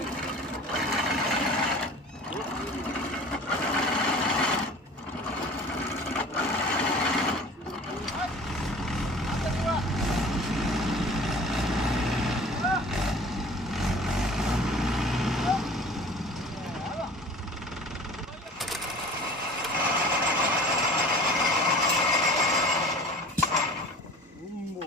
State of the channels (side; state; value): both; normal; correlation 0.43